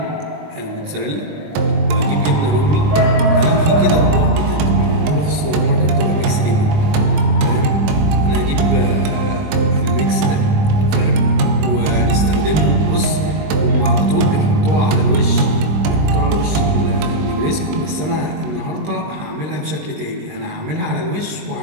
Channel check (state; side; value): late; left; 20 ms